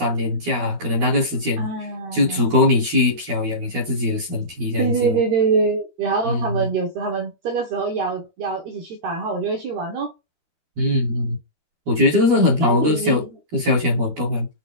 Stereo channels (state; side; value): late; left; 12 ms